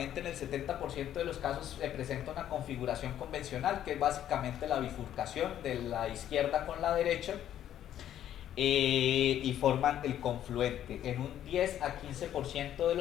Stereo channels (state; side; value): quieter; right; 11.1 dB